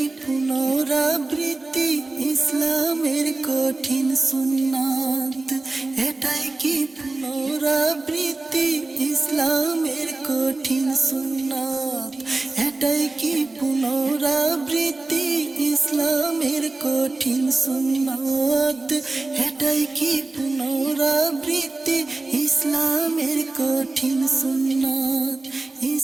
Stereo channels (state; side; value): quieter; left; 3.3 dB